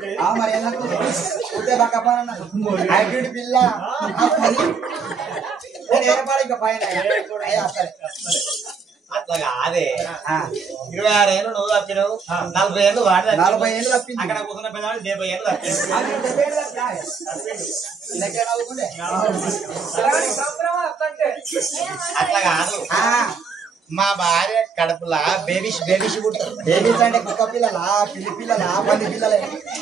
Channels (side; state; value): left; quieter; 5.6 dB